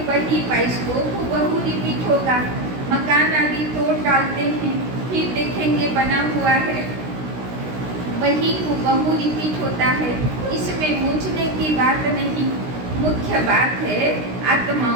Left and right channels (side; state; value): left; late; 16 ms